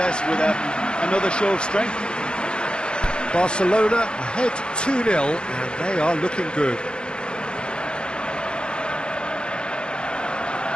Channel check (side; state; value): right; late; 0.051 ms